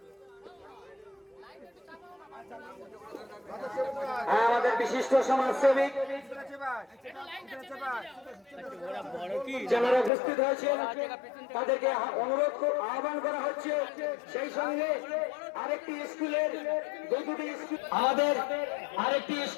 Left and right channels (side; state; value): right; drops out; at 10.1 s